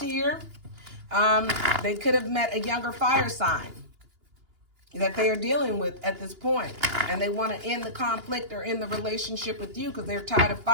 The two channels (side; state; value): left; late; 2.9 ms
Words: They could have met a younger fire sign that they are dealing with at this point. And they want to end the conflict or end the relationship with you because they're tired of